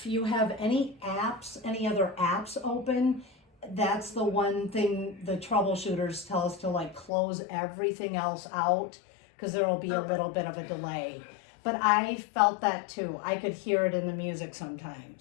you have any other apps open, that's the one thing the troubleshooters tell us to like close everything else out, because there will be a little bit of a delay. But I felt that too. I could hear it in the music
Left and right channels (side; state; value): right; drops out; at 7.1 s